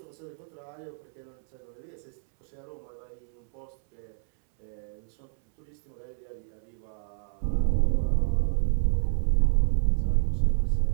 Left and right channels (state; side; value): silent; left; 59 dB below the other